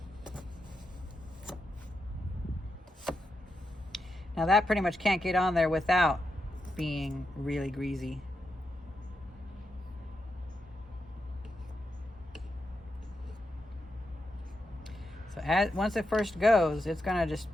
Now that pretty much can't get on there without being really greasy. So once it first goes, it's gonna just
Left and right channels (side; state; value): both; normal; correlation 0.85